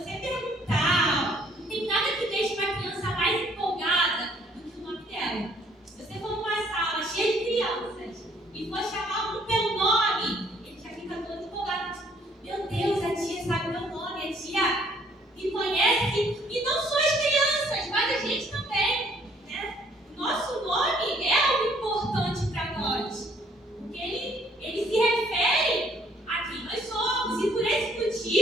perguntar, não tem nada que deixe uma criança mais empolgada do que o nome dela. Se você for numa sala cheia de crianças e for chamar um pelo nome, ele já fica todo empolgado. Meu Deus, a tia sabe meu nome, a tia me conhece, e não só as crianças, mas a gente também, né? O nosso nome é algo importante para nós, porque ele se refere a quem nós somos, e por esse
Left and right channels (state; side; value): normal; both; correlation 0.63